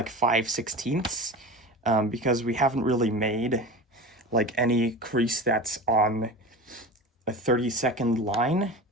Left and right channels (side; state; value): both; normal; correlation 0.31